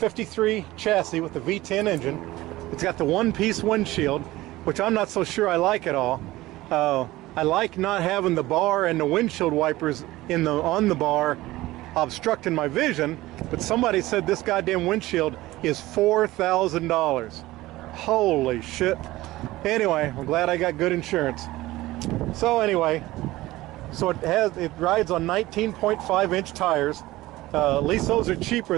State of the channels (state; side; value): quieter; left; 17.8 dB